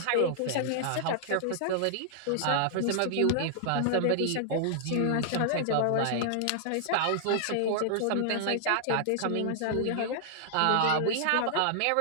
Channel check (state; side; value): different; both; correlation -0.01